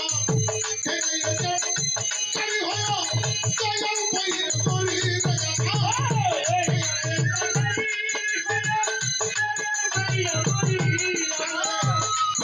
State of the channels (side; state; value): both; identical; correlation 1.00